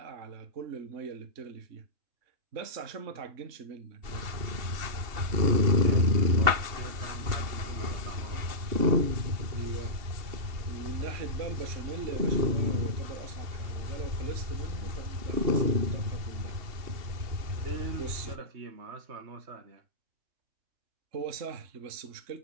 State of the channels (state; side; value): late; left; 2.8 ms